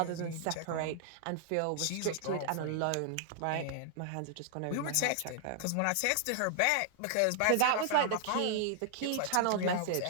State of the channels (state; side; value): different; both; correlation -0.01